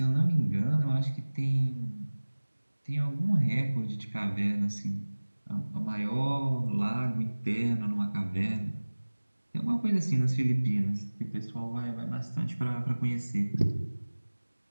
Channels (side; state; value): both; inverted; correlation -1.00